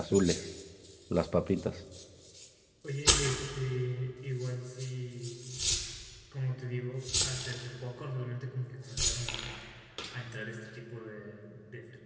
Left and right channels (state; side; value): identical; both; correlation 1.00